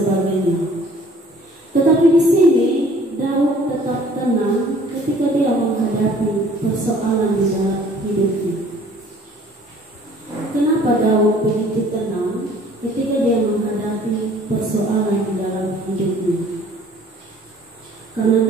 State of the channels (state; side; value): normal; both; correlation 0.54